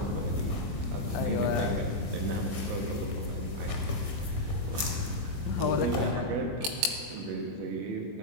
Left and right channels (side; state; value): left; late; 21 ms